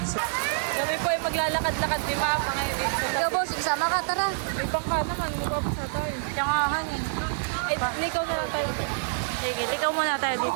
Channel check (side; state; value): left; silent; digital silence